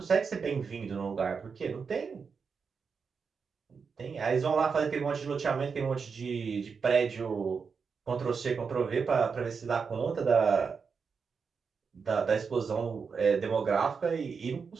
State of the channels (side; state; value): left; quieter; 5.6 dB